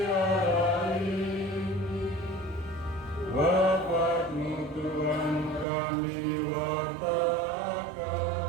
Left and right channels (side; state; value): left; drops out; at 5.7 s